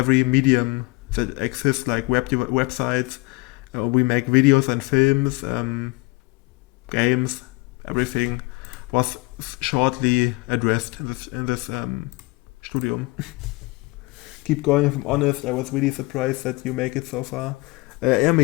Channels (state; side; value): quieter; right; 24.4 dB